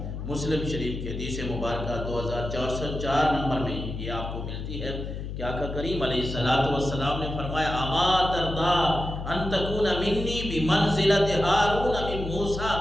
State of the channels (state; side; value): noise; left; hum, 6 dB below the sound